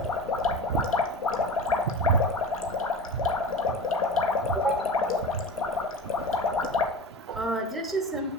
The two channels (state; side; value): normal; both; correlation 0.31